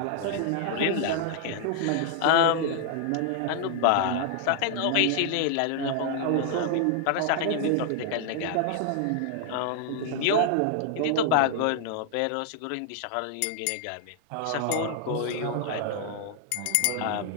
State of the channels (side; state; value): both; different; correlation 0.00